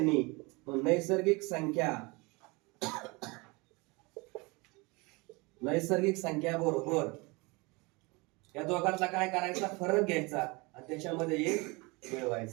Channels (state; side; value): quieter; left; 26.5 dB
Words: नैसर्गिक संख्या बरोबर या दोघांचा काय करायचा? फरक घ्यायचा आणि त्याच्यामध्ये एक